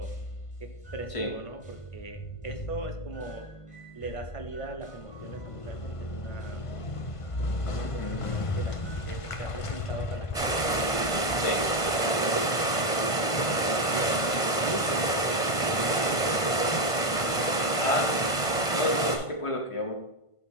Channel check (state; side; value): late; right; 1.5 ms